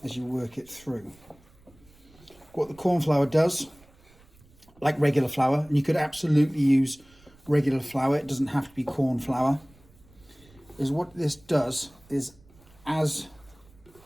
as you work it through. What the corn flour does, like regular flour, and you could absolutely use regular flour, it doesn't have to be corn flour, is what this does is as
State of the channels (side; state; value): right; noise; rumble, 27 dB below the sound